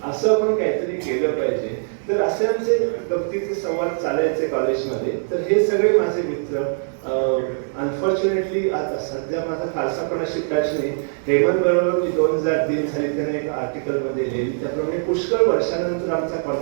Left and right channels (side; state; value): left; silent; digital silence